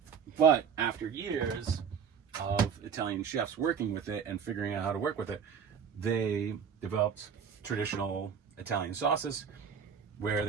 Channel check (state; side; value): quieter; left; 6.9 dB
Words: But after years of Italian chefs working with it and figuring out how to work with it, they developed traditional Italian sauces where